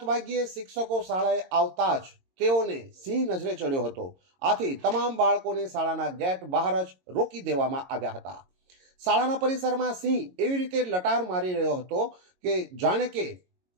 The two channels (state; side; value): late; left; 22 ms